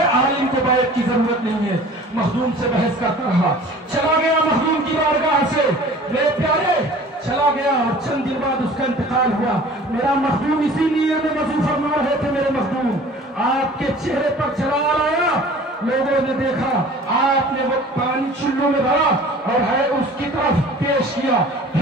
आलिम को बैत की जरूरत नहीं है। मखदूम से बहस करता रहा, चला गया मखदूम की बारगाह से। मेरे प्यारे, चला गया और चंद दिन बाद उसका इंतकाल हुआ। मेरा मखदूम इसीलिए में वजू फरमा रहे थे। मेरे मखदूम आपके चेहरे पर जलाल आया, लोगों ने देखा आपने वो पानी चुल्लू में भरा और है उसकी तरफ पेश किया,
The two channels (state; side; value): normal; both; correlation 0.46